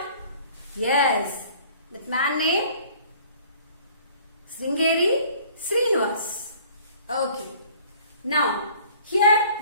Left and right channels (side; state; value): both; inverted; correlation -0.52